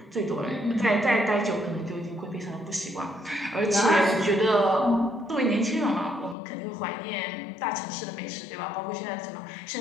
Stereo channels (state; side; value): drops out; right; at 6.4 s